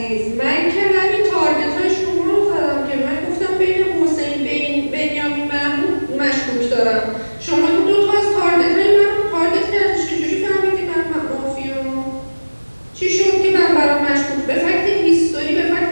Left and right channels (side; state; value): both; inverted; correlation -1.00